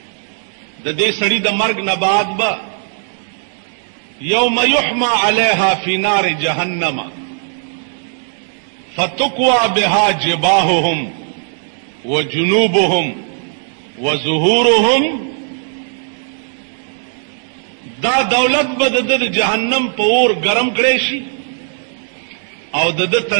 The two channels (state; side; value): silent; left; digital silence